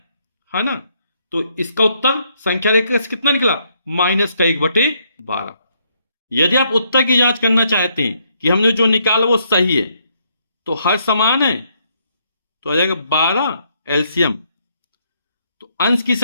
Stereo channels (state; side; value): inverted; both; correlation -0.73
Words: ना। तो इसका उत्तर संख्या रेखा से कितना निकला, -1/12। यदि आप उत्तर की जांच करना चाहते हैं कि हमने जो निकाला वो सही है, तो हर समान है, तो आ जाएगा 12 एलसीएम। तो अंश की